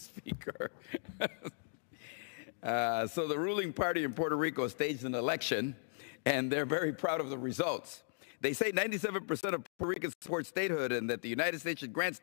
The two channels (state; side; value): silent; right; digital silence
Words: So the ruling party in Puerto Rico staged an election, and they're very proud of the results. They say 97% of Puerto Ricans support statehood and that the United States should grant